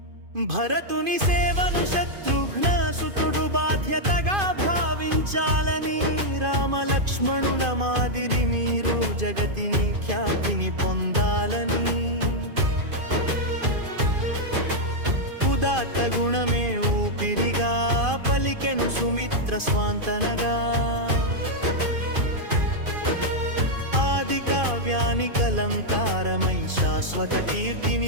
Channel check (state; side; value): late; left; 2.5 ms